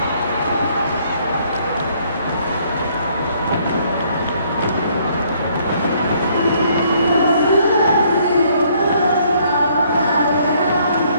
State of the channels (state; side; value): inverted; both; correlation -0.66